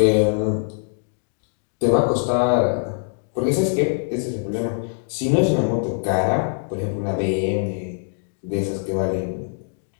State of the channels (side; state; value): right; silent; digital silence